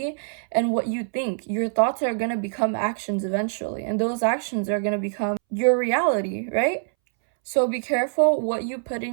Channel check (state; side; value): silent; left; 62 dB below the other